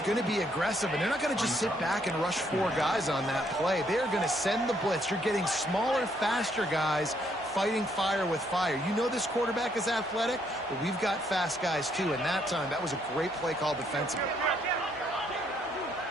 going to be aggressive, and they're not going to just sit back and rush 4 guys on that play. They're going to send the blitz. You're getting smaller, faster guys fighting fire with fire. You know this quarterback is athletic, but we've got fast guys too, and that time, that was a great play call defensively.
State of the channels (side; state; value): both; normal; correlation 0.71